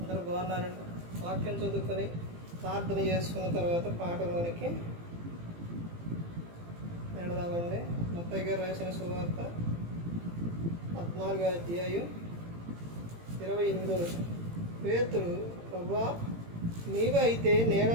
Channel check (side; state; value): left; late; 18 ms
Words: బాగున్నారండి. వాక్యం చదువుకొని ప్రార్థన చేసుకున్న తర్వాత పాటలోనికి వెళదామండి. మత్తయి గారు రాసిన సువార్త 14వ అధ్యాయం 28వ వచనం. పేతురు, ప్రభువా, నీవు అయితే నేల